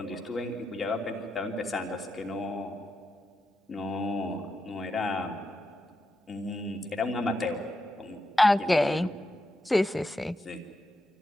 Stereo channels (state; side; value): normal; both; correlation 0.85